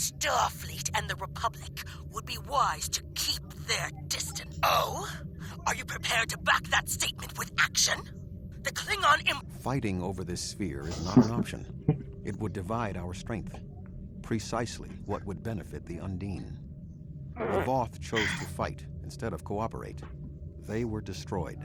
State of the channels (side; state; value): both; identical; correlation 1.00